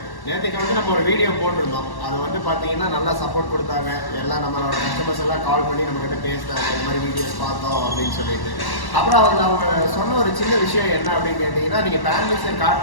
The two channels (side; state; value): right; late; 1.1 ms